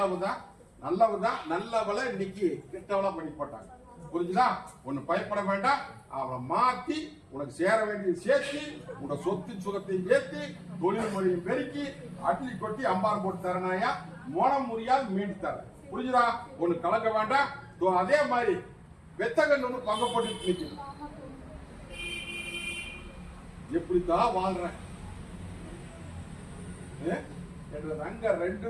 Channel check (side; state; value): both; identical; correlation 1.00